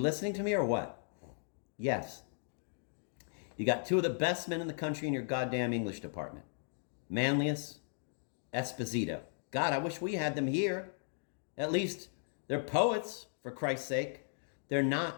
listening to me or what? Yes. You got two of the best men in the country in your goddamn English department. Manlius, Esposito. God, I wish we had them here. At least they're poets, for Christ's sake. They're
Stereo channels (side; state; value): right; silent; 54 dB below the other